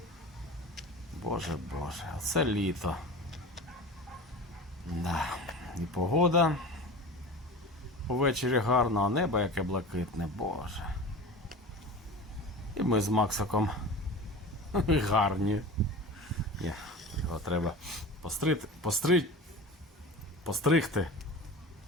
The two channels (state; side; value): normal; both; correlation 0.33